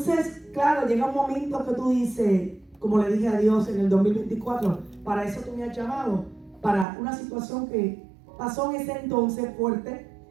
claro, llega un momento que tú dices, como le dije a Dios en el 2024, para eso tú me has llamado, para una situación que pasó en ese entonces fuerte,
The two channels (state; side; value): drops out; left; at 6.9 s